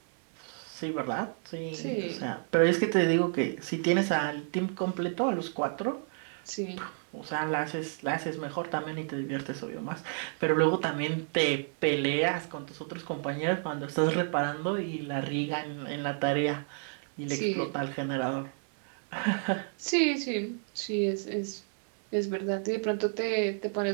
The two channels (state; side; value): silent; left; 57 dB below the other